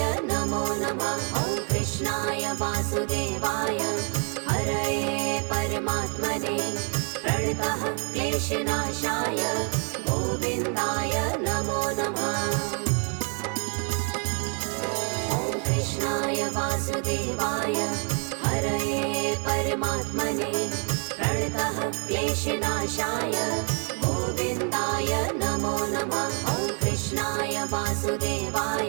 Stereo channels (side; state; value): left; quieter; 39.9 dB